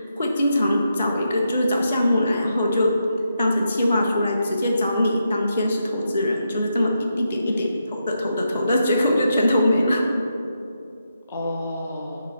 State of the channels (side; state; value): both; inverted; correlation -0.83